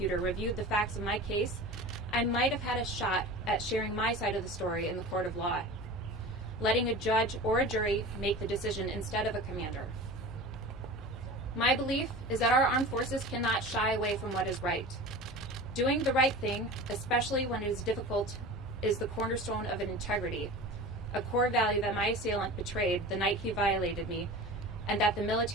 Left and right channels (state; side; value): normal; both; correlation 0.34